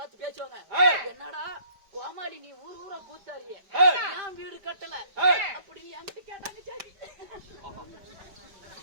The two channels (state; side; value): late; left; 5.1 ms